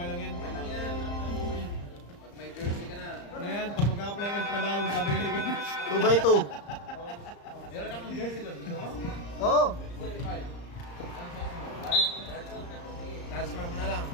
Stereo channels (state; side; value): late; right; 35 ms